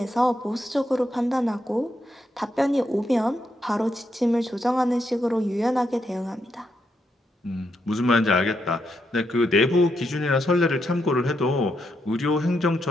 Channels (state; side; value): normal; both; correlation 0.81